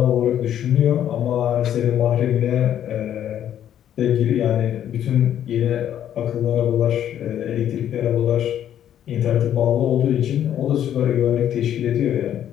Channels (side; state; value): right; quieter; 10.5 dB